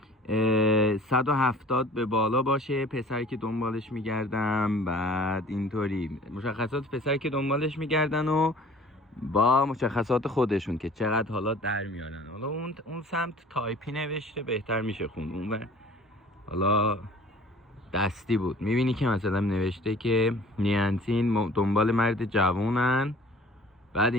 170 به بالا باشه، پسری که دنبالش میگردم. بعد اینطوری مشخصات پسری که دنبالش میگردن و با مشخصات خودشون که چقدر حالا در میارن. حالا اون سمت تایپی نوشته، بهتر میشه خوند. اون حالا دستی بود. میبینی که مثلا نوشته که نیانتین دنبال مرد جوونن. بعد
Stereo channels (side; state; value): both; normal; correlation 0.48